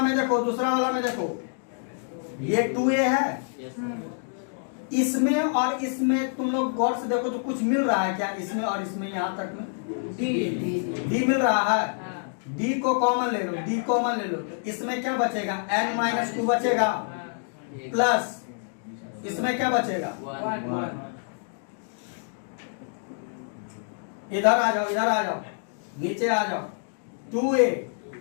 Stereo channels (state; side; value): silent; right; digital silence